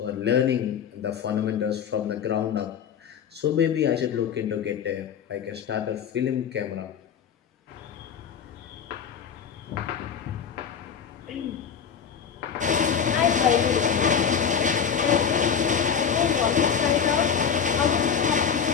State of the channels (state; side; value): quieter; right; 7.4 dB